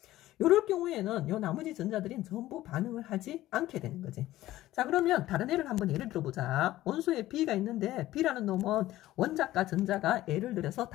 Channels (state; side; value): quieter; right; 15.4 dB